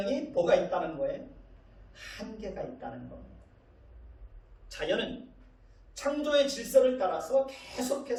뭐가 있다는 거예요? 한계가 있다는 겁니다. 자연은 창조의 질서를 따라서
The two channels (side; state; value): both; identical; correlation 1.00